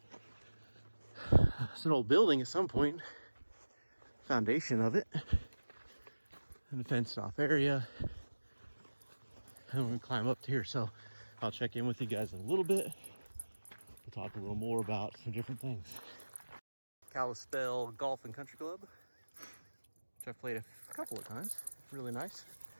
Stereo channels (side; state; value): both; inverted; correlation -1.00